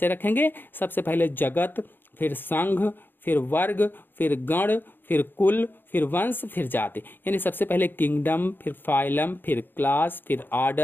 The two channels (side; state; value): right; late; 0.096 ms